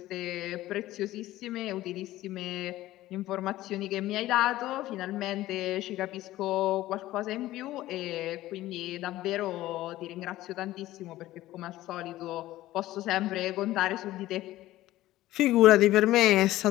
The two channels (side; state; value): right; quieter; 15.8 dB